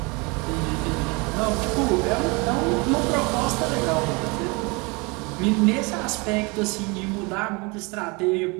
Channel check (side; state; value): left; quieter; 28.1 dB